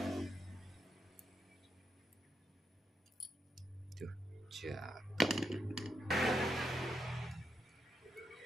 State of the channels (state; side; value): normal; both; correlation 0.82